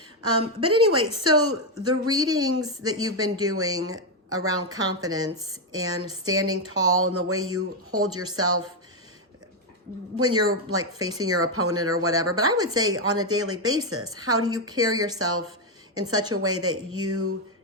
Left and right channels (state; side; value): normal; both; correlation 0.04